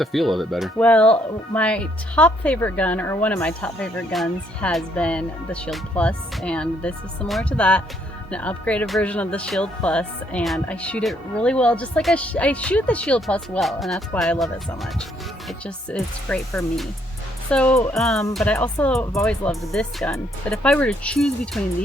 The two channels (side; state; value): both; normal; correlation 0.70